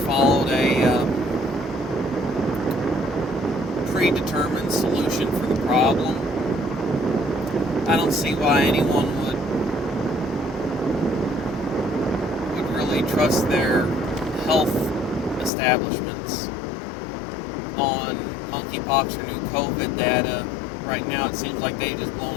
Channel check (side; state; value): right; drops out; at 15.5 s